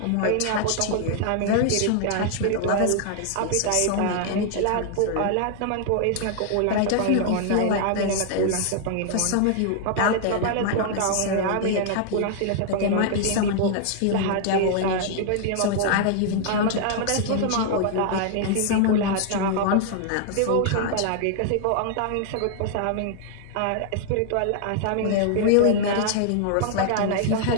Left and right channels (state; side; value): different; both; correlation -0.01